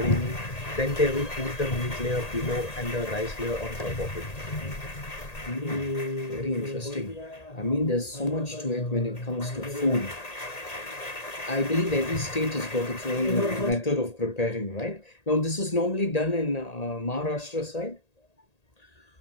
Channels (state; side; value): late; right; 1.8 ms